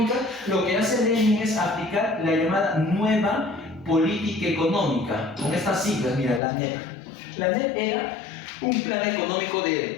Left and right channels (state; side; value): drops out; right; at 6.4 s